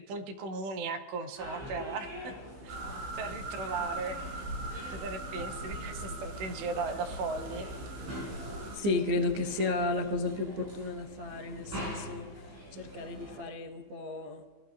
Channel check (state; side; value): late; left; 15 ms